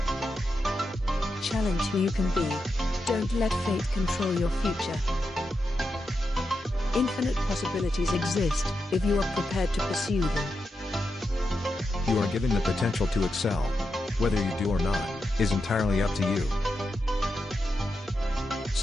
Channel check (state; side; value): normal; both; correlation 0.87